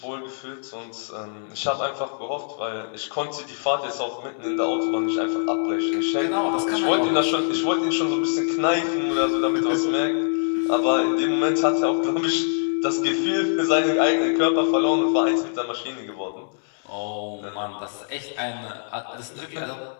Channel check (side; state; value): right; silent; 63 dB below the other